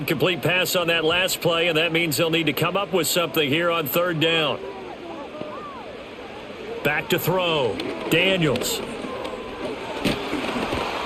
pass on that last play, and that means they'll need to come up with something here on 3rd down. Back to throw. Daniels.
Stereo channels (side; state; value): both; identical; correlation 1.00